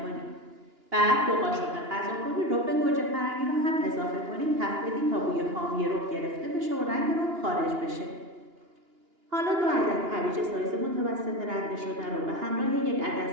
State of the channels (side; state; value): left; late; 2.9 ms